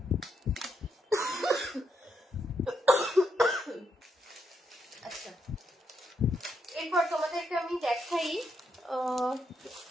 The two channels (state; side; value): normal; both; correlation 0.80